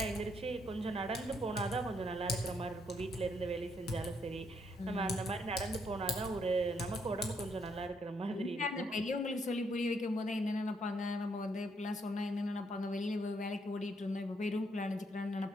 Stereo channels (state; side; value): normal; both; correlation 0.73